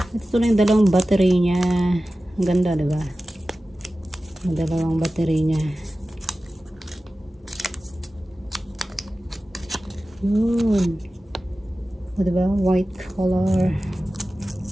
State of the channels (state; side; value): normal; both; correlation 0.95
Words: Ito na yung dalawang battery niya. Ang ganda, diba? Ang dalawang battery niya. Yun. O, diba? White color.